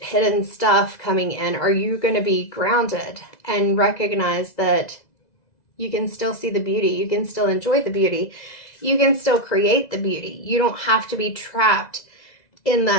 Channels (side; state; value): right; late; 2.0 ms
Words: stuff coming in? Are you going to be grounded and recognize that you can still see the beauty, you can still enjoy the beauty, you can still create the beauty? You don't have to be trapped in